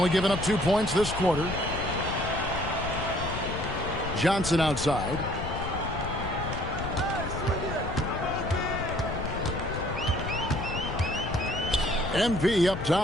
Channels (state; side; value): noise; left; rumble, 6 dB below the sound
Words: giving up 2 points this quarter. Johnson outside. MP up